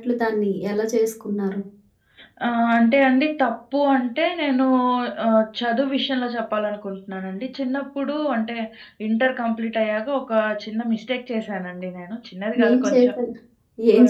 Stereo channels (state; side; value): identical; both; correlation 1.00